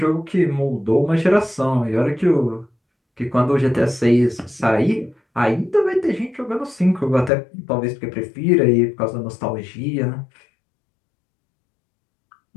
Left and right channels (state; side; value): drops out; right; at 7.3 s